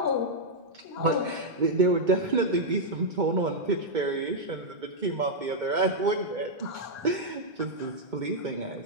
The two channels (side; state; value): left; late; 2.2 ms